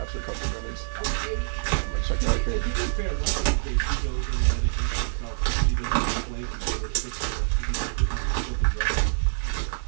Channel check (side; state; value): left; silent; 61 dB below the other